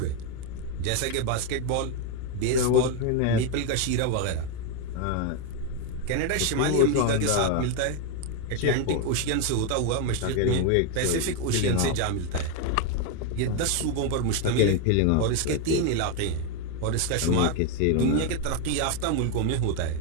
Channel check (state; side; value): different; both; correlation 0.01